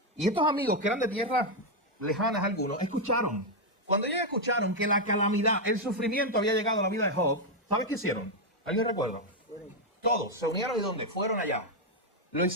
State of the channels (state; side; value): normal; both; correlation 0.01